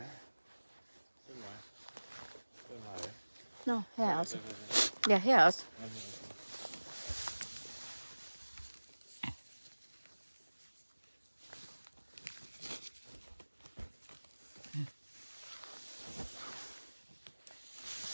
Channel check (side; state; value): both; inverted; correlation -1.00